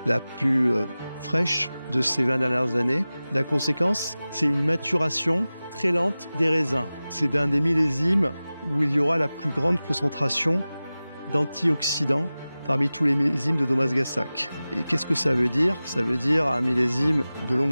la plus fraîche de ces 20 dernières années. La conséquence, c'est une maturation très lente des raisins. C'est un des millésimes où il y aura la plus grande concentration d'antioxydants parmi tous les millésimes de Domagassac. Et qu'est-ce que ça veut dire? Ça veut dire un millésime de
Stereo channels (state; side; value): inverted; both; correlation -0.97